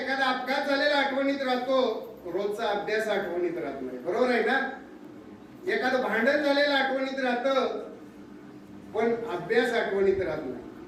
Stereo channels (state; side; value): identical; both; correlation 1.00